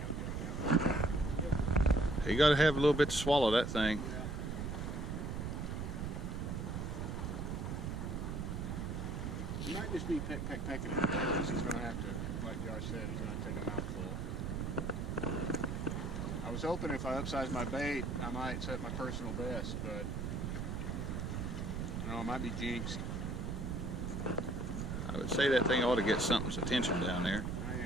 You got to have a little bit to swallow that thing. He might just be pecking it because he's going to have to, like Josh said, he's going to take a mouthful. I was hoping if I upsize my bait, I might set my personal best, but I might be jinxed. I would say that thing ought to get something's attention down there.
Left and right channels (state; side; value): noise; right; rumble, 3 dB below the sound